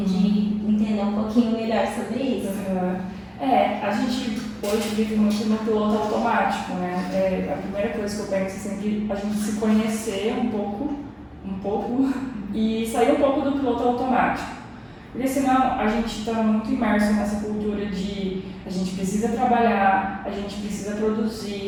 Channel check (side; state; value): both; identical; correlation 1.00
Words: de entender um pouquinho melhor sobre isso. A gente hoje vive muito no piloto automático, né? A primeira coisa que eu penso é sempre a gente se conhecer um pouco e sair um pouco do piloto automático. Porque senão a gente está muito imerso nessa cultura de a gente precisa trabalhar, a gente precisa